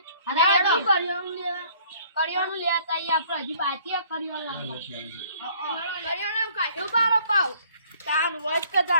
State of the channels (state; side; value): inverted; both; correlation -0.58